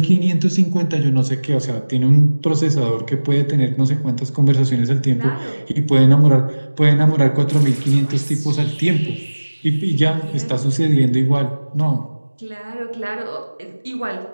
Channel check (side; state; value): both; inverted; correlation -1.00